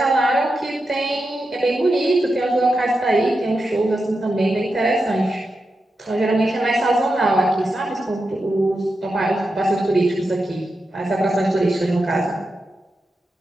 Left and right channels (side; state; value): both; normal; correlation 0.89